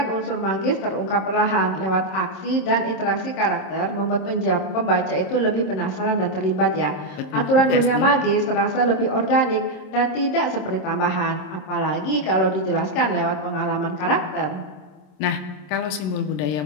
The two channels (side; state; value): right; late; 27 ms